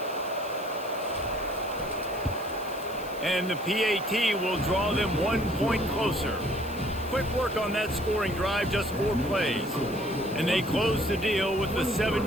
And the PAT will draw them 1 point closer. Quick work on that scoring drive, just 4 plays. And they close the deal with the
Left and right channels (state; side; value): noise; left; hiss, 18 dB below the sound